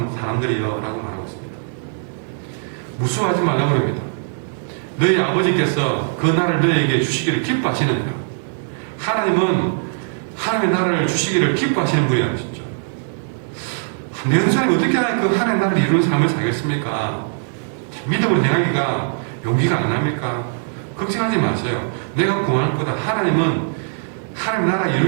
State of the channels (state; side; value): silent; left; digital silence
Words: 사람들이여 라고 말하고 있습니다. 무수하지 말라고 합니다. 너희 아버지께서 그 나라를 너희에게 주시기를 기뻐하시느니라. 하나님은 하나님의 나라를 주시기를 기뻐하시는 분이라는 것이죠. 내 사람이 어떻게 그 하나님의 나라를 이루는 삶을 살겠습니까? 믿음으로 행하기가 용기가 안 납니까? 걱정하지 마세요. 내가 구할 거다. 하나님은 하나님 나라